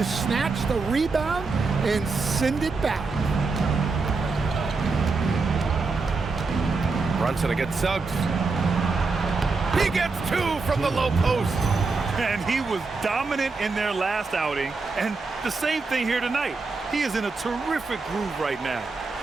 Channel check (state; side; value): quieter; left; 4.1 dB